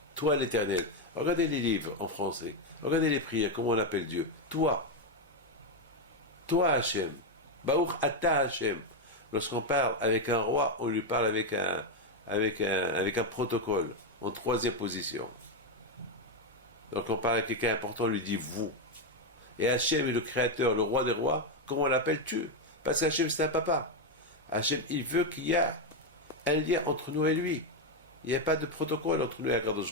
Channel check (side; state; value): both; normal; correlation 0.05